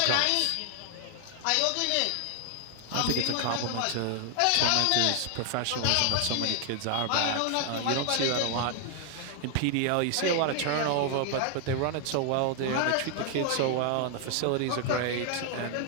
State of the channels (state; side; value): different; both; correlation 0.00